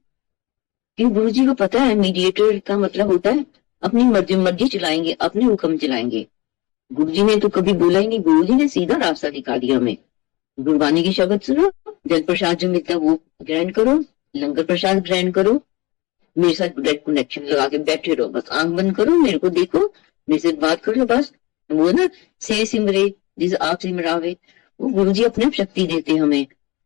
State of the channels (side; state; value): right; quieter; 23.0 dB